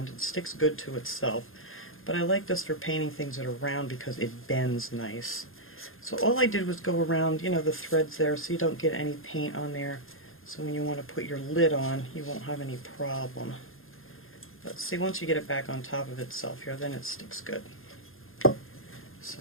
It sticks good to itself. But I like this for painting things that are round because it bends nice. So all I did was go around, you know, the threads there so you don't get any paint on there. So when you want to put your lid on, you won't have any problem. But see, once you get it back on top of itself here, then it sticks good. So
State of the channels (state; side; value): late; right; 0.60 ms